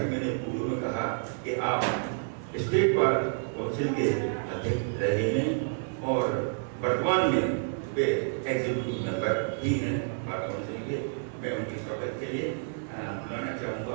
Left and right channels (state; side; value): silent; left; 58 dB below the other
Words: मैंने पूर्व में कहा कि आप स्टेट बार काउंसिल के अध्यक्ष रहे हैं और वर्तमान में वे एग्जीक्यूटिव मेंबर ही हैं बार काउंसिल के। मैं उनके स्वागत के लिए बुलाना